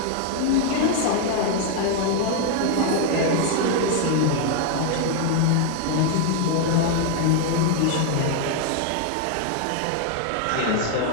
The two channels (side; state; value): both; different; correlation 0.00